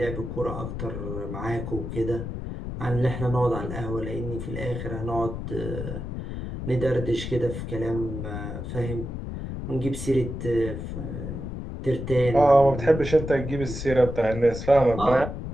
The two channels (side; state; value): left; noise; rumble, 6 dB below the sound